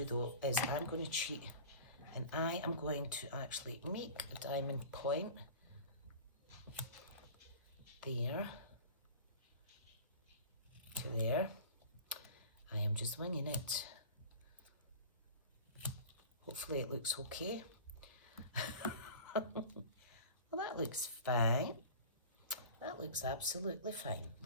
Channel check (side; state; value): both; inverted; correlation -0.38